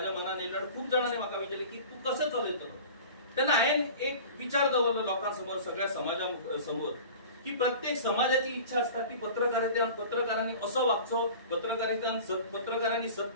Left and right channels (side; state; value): both; inverted; correlation -0.39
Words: मनात येयलो. खूप जणांनी म्हाका विचारले की तू कसं चलयतलो. तेन्ना हांवें एक विचार दवरलो लोकांसमोर, सगळ्या समाजा समोर, की प्रत्येक समाजाची इच्छा असता की पत्रकारांनी असो वागचो, पत्रकारांनी